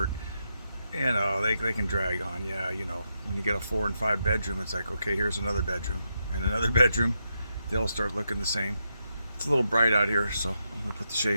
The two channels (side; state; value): both; inverted; correlation -0.83